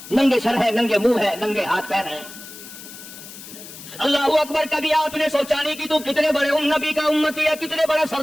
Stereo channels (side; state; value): left; noise; hiss, 15 dB below the sound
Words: ننگے سر ہے، ننگے منہ ہے، ننگے ہاتھ پیر ہیں۔ اللہ اکبر! کبھی آپ نے سوچا نہیں کہ تو کتنے بڑے نبی کا امتی ہے، کتنے بڑے